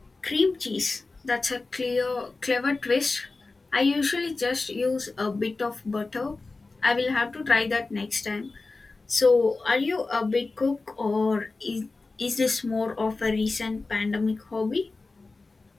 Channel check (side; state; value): right; quieter; 3.6 dB